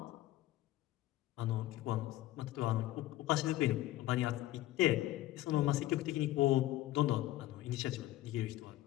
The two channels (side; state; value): right; quieter; 15.5 dB